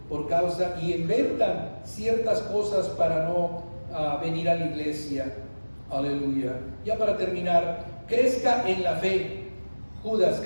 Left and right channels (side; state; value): both; inverted; correlation -1.00